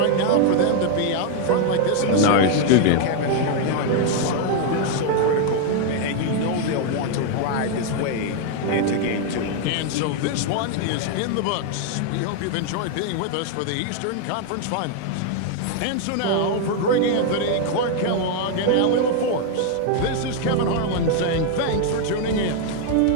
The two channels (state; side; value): different; both; correlation 0.00